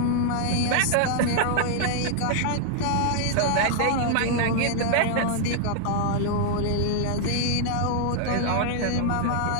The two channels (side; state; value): both; different; correlation 0.00